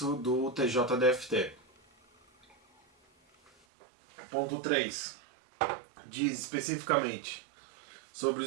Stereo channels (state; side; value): drops out; left; at 3.5 s